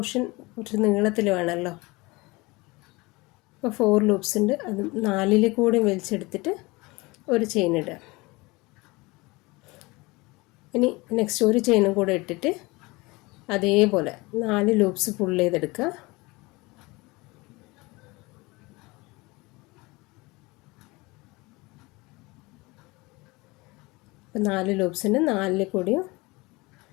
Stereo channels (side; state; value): right; quieter; 23.6 dB